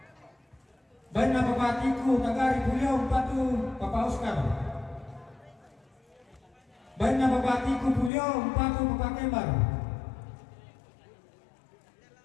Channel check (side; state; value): right; drops out; at 8.1 s